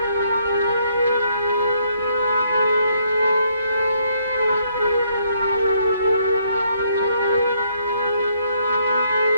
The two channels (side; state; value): both; inverted; correlation -0.71